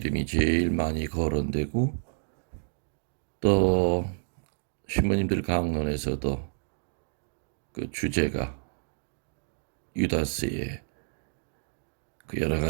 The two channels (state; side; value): silent; left; digital silence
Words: 제일 많이 거론되고 또 신부님들 강론에서도 그 주제가 유다스의 그 여러